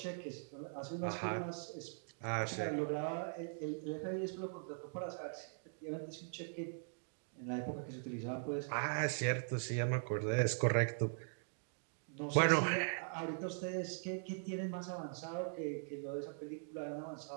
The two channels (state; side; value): silent; left; digital silence